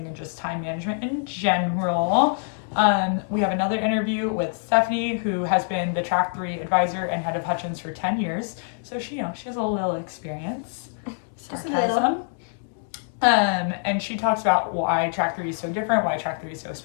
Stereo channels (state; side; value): silent; right; 62 dB below the other